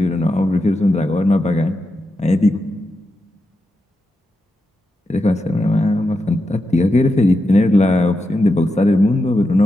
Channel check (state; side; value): normal; both; correlation 0.87